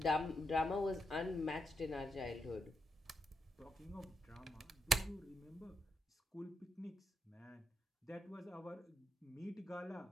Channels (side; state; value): both; normal; correlation 0.81